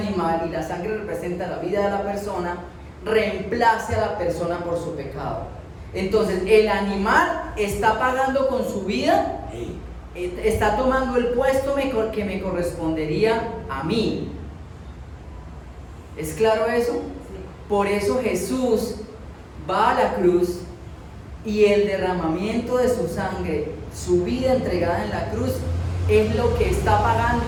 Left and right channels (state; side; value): identical; both; correlation 1.00